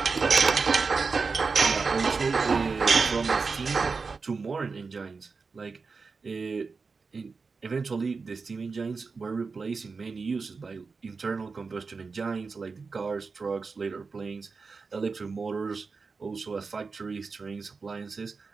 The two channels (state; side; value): quieter; left; 4.6 dB